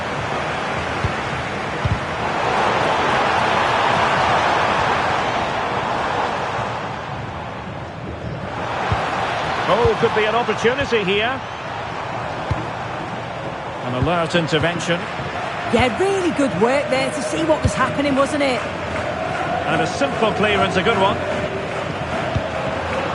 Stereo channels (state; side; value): identical; both; correlation 1.00